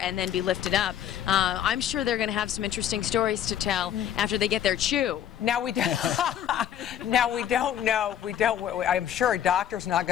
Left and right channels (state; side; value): quieter; right; 10.3 dB